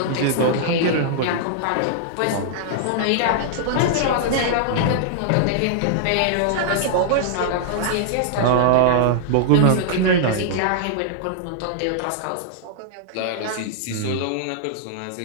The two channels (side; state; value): both; different; correlation -0.01